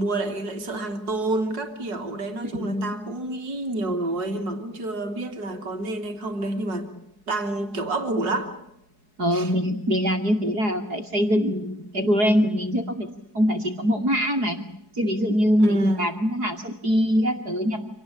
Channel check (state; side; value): late; left; 4.7 ms